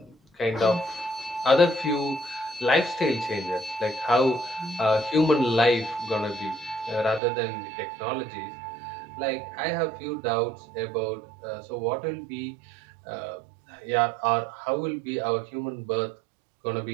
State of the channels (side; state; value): left; drops out; at 7.2 s